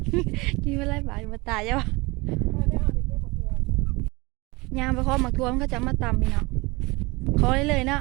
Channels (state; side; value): quieter; left; 24.6 dB